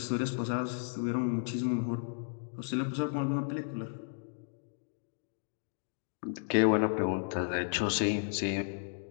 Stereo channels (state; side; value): silent; right; digital silence